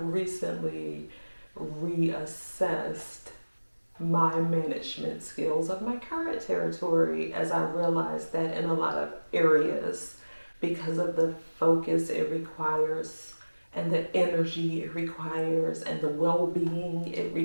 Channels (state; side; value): inverted; both; correlation -1.00